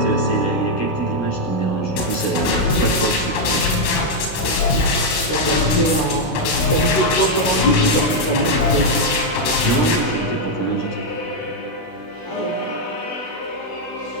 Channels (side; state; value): right; late; 16 ms